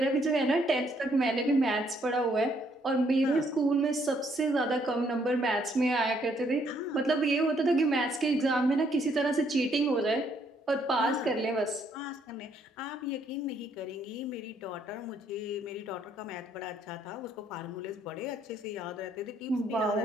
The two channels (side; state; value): both; normal; correlation 0.69